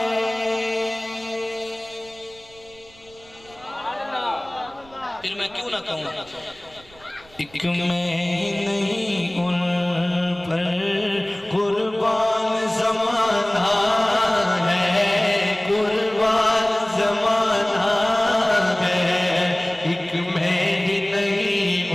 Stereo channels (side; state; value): right; noise; rumble, 26 dB below the sound